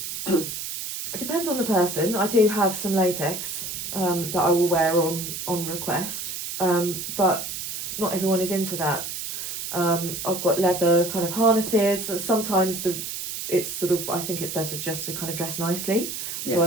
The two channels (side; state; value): right; noise; hiss, 6 dB below the sound